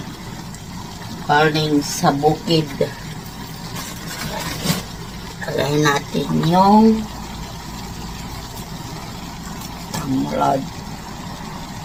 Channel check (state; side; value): identical; both; correlation 1.00